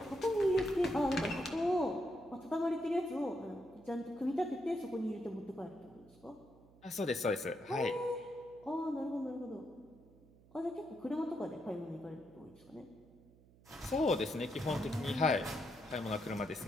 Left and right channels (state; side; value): noise; right; hum, 26 dB below the sound